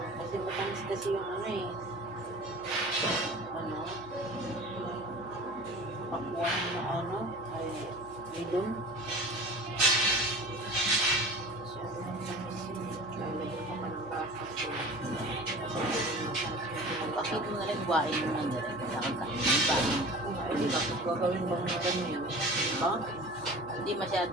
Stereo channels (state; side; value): noise; right; hum, 21 dB below the sound